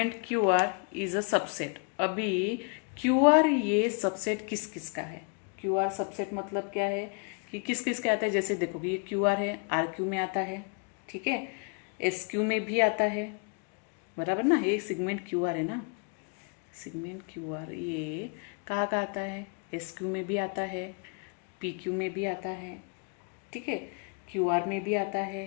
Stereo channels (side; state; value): right; quieter; 35.4 dB